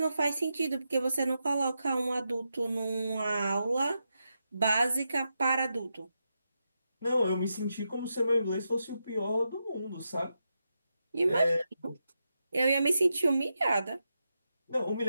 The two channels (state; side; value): inverted; both; correlation -0.87